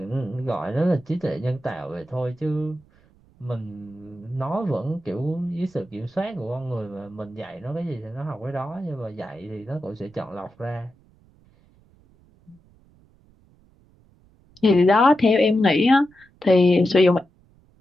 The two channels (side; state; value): right; noise; rumble, 30 dB below the sound